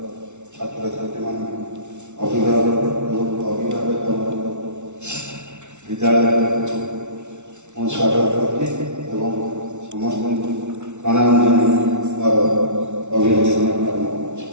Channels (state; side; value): late; left; 0.83 ms